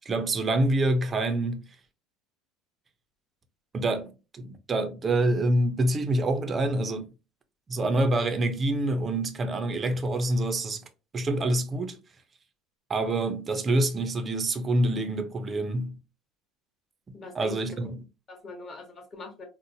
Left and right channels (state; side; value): normal; both; correlation 0.76